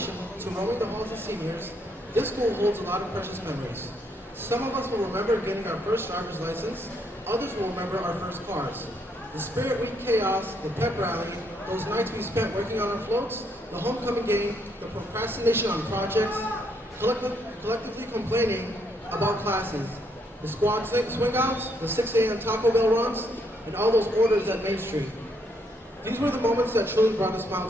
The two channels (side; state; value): both; normal; correlation 0.73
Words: to roaming the halls of seniors, this school holds a lot of precious memories. Some of us will remember getting our first driver's license, others will remember our first cars. The Spirit Week chaos, the pep rally, those nights we spent working on our floats, the homecoming game, the procrastination on projects, collectively complaining about classes, the squad swing outs, the 6 a.m. Taco Bell runs, and all those orders at Main Street. These were the moments that truly brought a smile